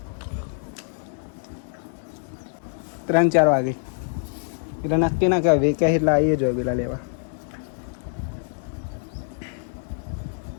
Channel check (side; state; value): right; silent; digital silence